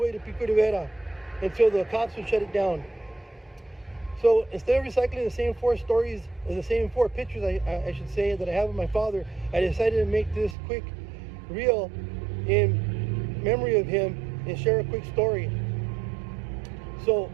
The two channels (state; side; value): drops out; left; at 10.6 s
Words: to Pico Rivera, until the cops would shut it down. So instead of recycling the same four stories, or the same four pictures, I should say, that I have of my father, I decided to make this quick reel in memory of him and share a quick story. So